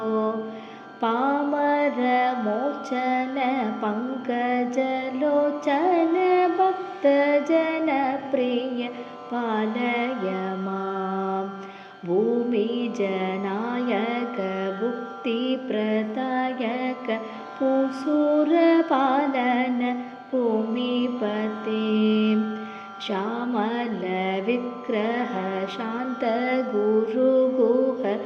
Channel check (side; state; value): both; identical; correlation 1.00